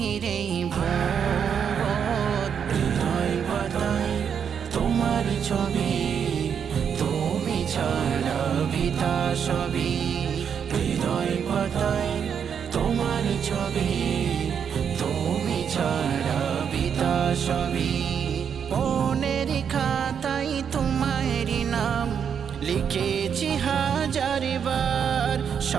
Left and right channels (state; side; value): quieter; left; 7.6 dB